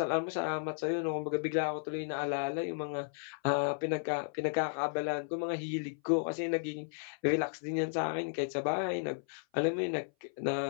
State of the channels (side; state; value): right; silent; 55 dB below the other